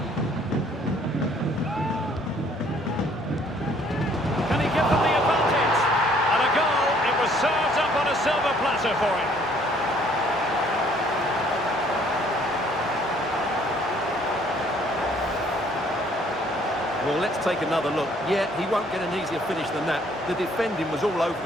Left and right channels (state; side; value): normal; both; correlation 0.61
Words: Can he give them the advantage? And a goal. It was served up on a silver platter for him. Well, let's take another look. Yeah, he won't get an easier finish than that. The defending was all over